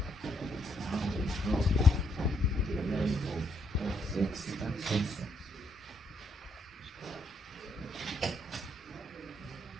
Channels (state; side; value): normal; both; correlation 0.74